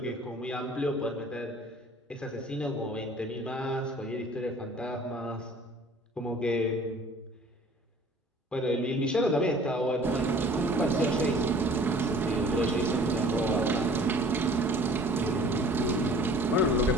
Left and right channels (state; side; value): normal; both; correlation 0.50